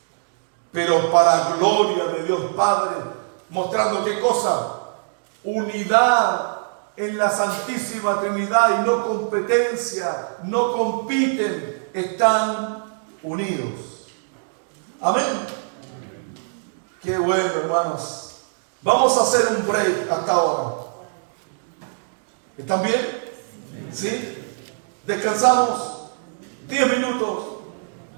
pero para gloria de Dios Padre, mostrando ¿qué cosa? Unidad en la Santísima Trinidad y no competencia, no compiten, están unidos. Amén. Qué bueno, hermanos. Vamos a hacer un break hasta ahora. ¿Están bien? ¿Sí? Descansamos 10 minutos.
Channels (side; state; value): left; silent; digital silence